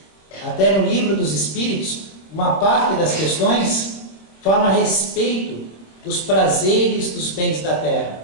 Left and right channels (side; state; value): right; late; 26 ms